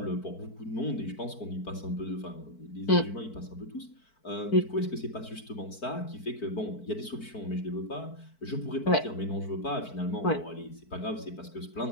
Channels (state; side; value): late; right; 4.5 ms